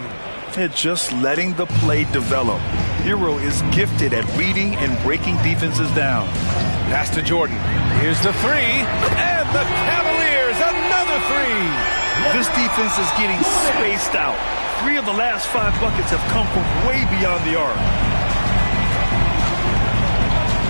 It's just letting the play develop. Hero is gifted at reading and breaking defenses down. Pass to Jordan. Here's the three, and the Cavaliers, another three. This defense is getting spaced out. 3 of the last 5 buckets have come from way beyond the arc.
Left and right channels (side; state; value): both; inverted; correlation -1.00